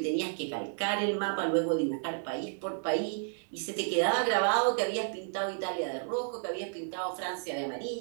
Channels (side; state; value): left; silent; digital silence